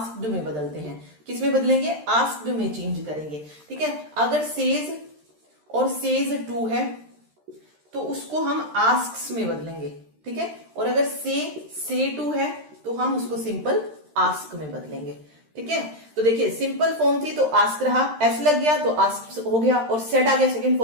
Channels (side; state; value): left; late; 13 ms